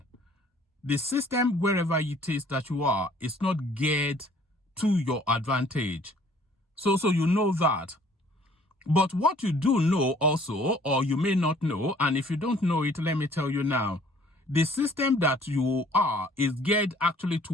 the system wherever it is that you are is not geared to your advantage. So you know that. But what you do know also, or you may not know, and if you don't know it, let me tell you now, the system that you are is geared actually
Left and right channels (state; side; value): normal; both; correlation 0.56